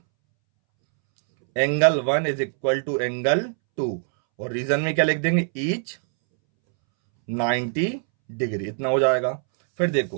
angle 1 is equal to angle 2 और रीजन में क्या लिख देंगे, ईच 90 डिग्री, इतना हो जाएगा। फिर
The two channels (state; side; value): silent; left; 63 dB below the other